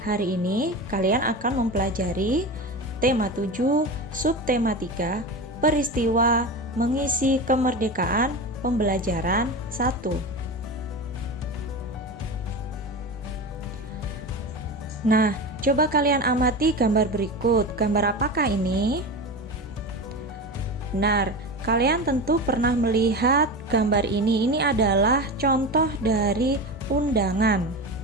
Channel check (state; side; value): normal; both; correlation 0.25